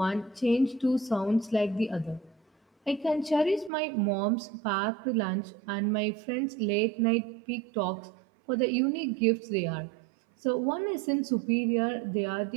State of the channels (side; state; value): left; drops out; at 3.7 s